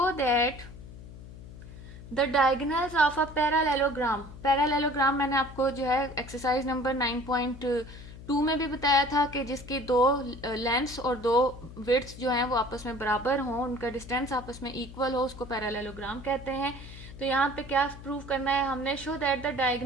that the diagonals of a parallelogram. Parallelogram मैंने आपको जो है एक्सरसाइज नंबर 9.2 में भी बताया था कि जिसकी दो लेंथ्स और दो विड्थ्स जो हैं वो आपस में बराबर हों, उनका डिस्टेंस आपस में इक्वल हो, उसको पैरालेलोग्राम कहते हैं। तो यहाँ पे क्या प्रूव करना है हमने, show that the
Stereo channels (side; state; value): left; noise; hum, 15 dB below the sound